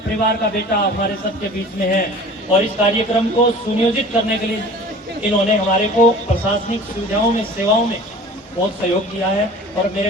परिवार का बेटा हमारे सबके बीच में है। और इस कार्यक्रम को सुनियोजित करने के लिए इन्होंने हमारे को प्रशासनिक सुविधाओं में, सेवाओं में बहुत सहयोग किया है। और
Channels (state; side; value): normal; both; correlation 0.43